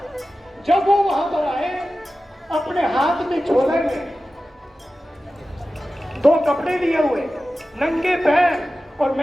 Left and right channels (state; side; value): normal; both; correlation 0.94